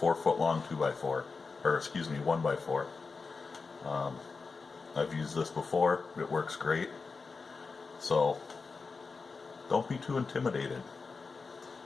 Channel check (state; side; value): quieter; right; 4.5 dB